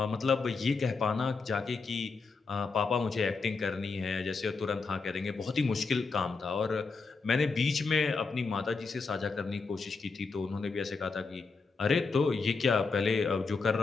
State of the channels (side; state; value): right; quieter; 4.4 dB